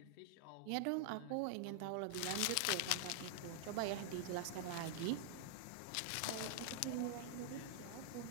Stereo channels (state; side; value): different; both; correlation -0.01